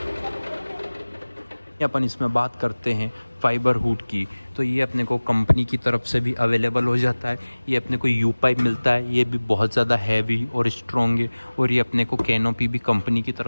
अपन इसमें बात करते हैं फाइबर हुड की तो ये अपने को कंपनी की तरफ से भी अवेलेबल हो जाता है। ये अपने को यू पाइप मिलता है, ये भी बहुत ज़्यादा हैवी और स्ट्रॉन्ग है। और ये अपने को कैनोपी भी कंपनी की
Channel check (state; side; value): inverted; both; correlation -1.00